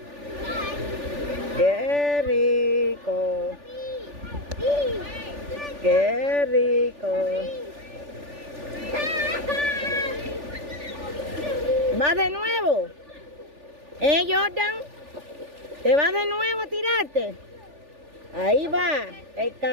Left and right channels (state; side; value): late; left; 3.4 ms